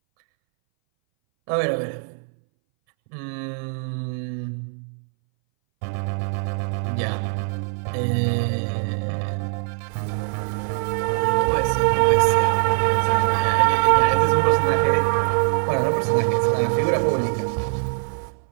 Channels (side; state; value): left; silent; 62 dB below the other